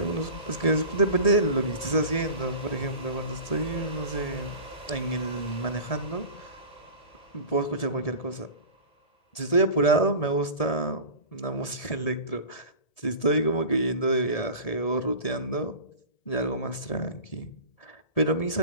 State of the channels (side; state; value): right; late; 1.7 ms